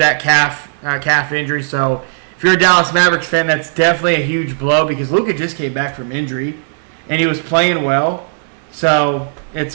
calf injury. So, if you're a Dallas Mavericks fan, that's definitely a huge blow because Luka just came back from injury, and he was playing well. So, it's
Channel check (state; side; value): silent; left; digital silence